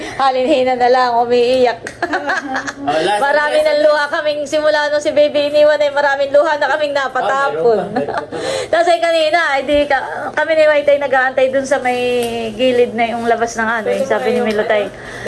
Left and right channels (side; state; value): both; identical; correlation 1.00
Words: Halinhina na lang, umiiyak. Marami ng luha kaming simula nung si baby iniwan ay maraming luha na kaming napatapon. Tapos ay kanina, kami ni White ay nag-aantay dun sa may gilid na yung labas ng ano. Yung sabi ni Milutay,